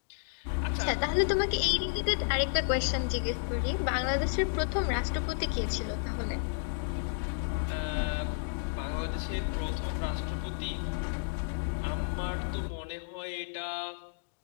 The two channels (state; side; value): silent; right; digital silence